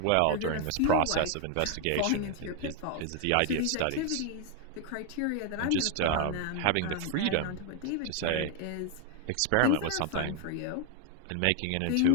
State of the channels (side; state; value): both; different; correlation 0.01